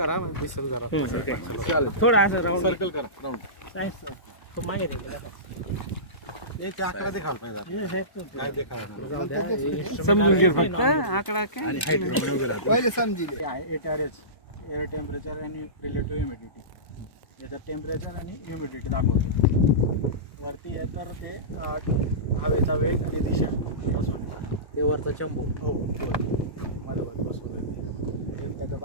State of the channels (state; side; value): late; right; 1.1 ms